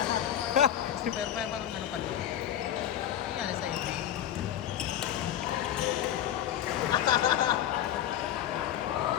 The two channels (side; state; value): right; quieter; 11.1 dB